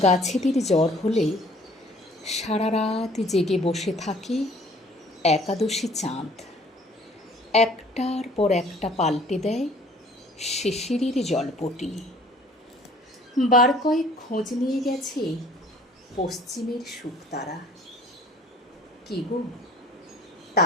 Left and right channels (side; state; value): both; normal; correlation 0.54